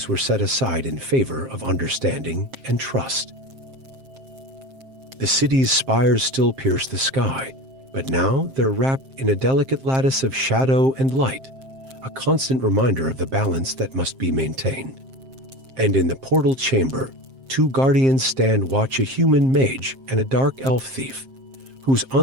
were set aside in favor of understanding and trust. The city's spires still pierce the sky, but now they're wrapped in a delicate lattice of shadow and light, a constant reminder of the balance that must be maintained. And in the portal chamber, two guardians stand watch, a human mage and a dark elf thief, whose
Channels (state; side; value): late; left; 7.6 ms